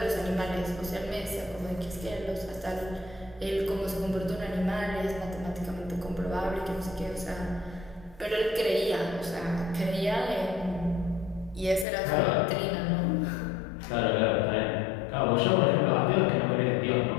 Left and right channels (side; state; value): right; drops out; at 11.9 s